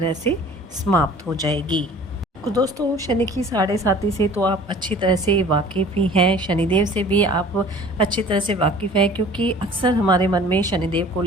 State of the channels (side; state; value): both; normal; correlation 0.47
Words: से समाप्त हो जाएगी। तो दोस्तों, शनि की साढ़े साती से तो आप अच्छी तरह से वाकिफ़ ही हैं, शनिदेव से भी आप अच्छी तरह से वाकिफ़ हैं, क्योंकि अक्सर हमारे मन में शनिदेव को